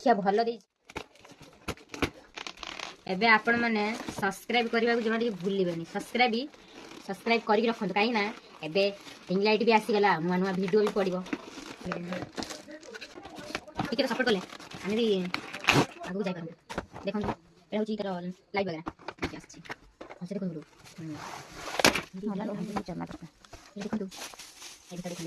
भलो दी। एबे आपण माने सब्सक्राइब करबा को जमा भूलिबेनी सब्सक्राइब करी रखंतु काई ना एबे रिंग लाइट भी आसी गला नुआ नुआ वीडियो भी पड़िबो ठीक है। तो सपोर्ट करले आमे भी आगु जाय करबो देखन एटा होची तर लाइव वगैरह आसी हसे देखन गुरु होला हम चलना करता देखन तू एटा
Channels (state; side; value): identical; both; correlation 1.00